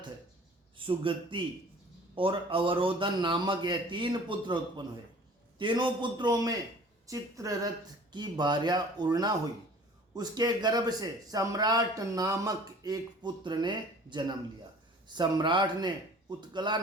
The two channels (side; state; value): both; normal; correlation 0.47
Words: सुगति और अवरोधन नामक यह 3 पुत्र उत्पन्न हुए। तीनों पुत्रों में चित्ररथ की भार्या उर्णा हुई, उसके गर्भ से सम्राट नामक एक पुत्र ने जन्म लिया। सम्राट ने उत्कला